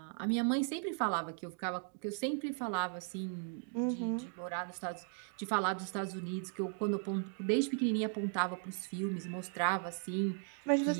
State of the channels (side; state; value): left; silent; 53 dB below the other